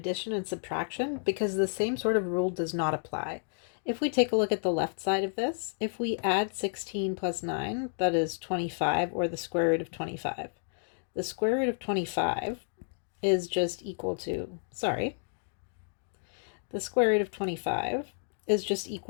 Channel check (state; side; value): silent; right; digital silence